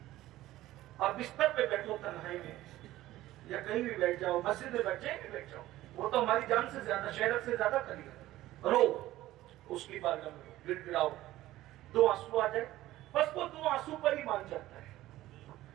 اور بستر پہ بیٹھو تنہائی میں یا کہیں بھی بیٹھ جاؤ، مسجد میں بیٹھ جائیں بیٹھ جاؤ، وہ تو ہماری جان سے زیادہ، شہرت سے زیادہ قریب ہے، رو اس کی بارگاہ میں گڑ گڑاؤ، دو آنسو آ جائے، بس وہ دو آنسو پر ہی مان جاتا ہے۔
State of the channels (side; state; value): left; quieter; 15.6 dB